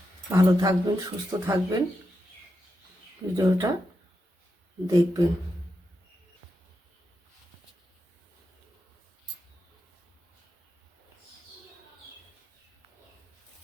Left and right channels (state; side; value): normal; both; correlation 0.87